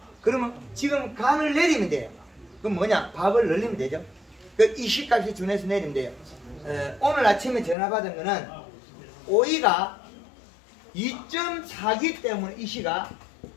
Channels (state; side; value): drops out; right; at 7.8 s